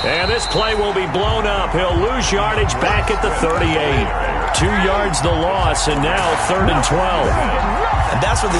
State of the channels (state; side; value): identical; both; correlation 1.00